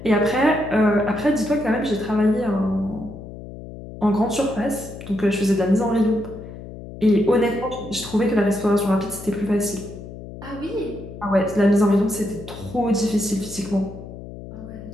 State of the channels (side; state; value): left; noise; hum, 13 dB below the sound